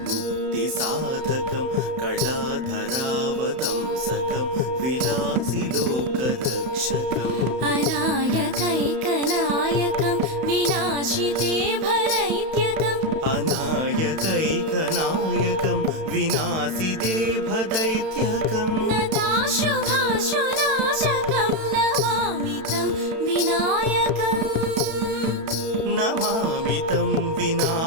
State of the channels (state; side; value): late; left; 31 ms